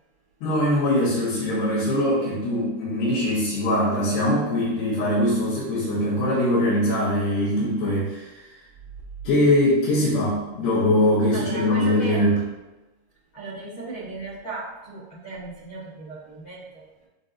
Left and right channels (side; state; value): right; late; 13 ms